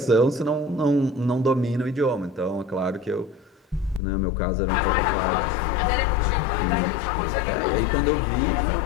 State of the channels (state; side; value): drops out; right; at 4.0 s